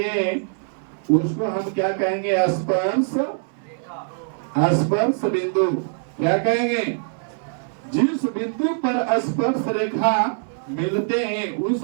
उसको हम क्या कहेंगे? स्पर्श बिंदु। क्या कहेंगे? जिस बिंदु पर स्पर्श रेखा मिलते हैं उस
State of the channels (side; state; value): left; silent; 63 dB below the other